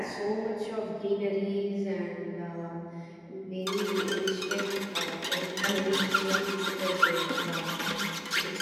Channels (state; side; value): identical; both; correlation 1.00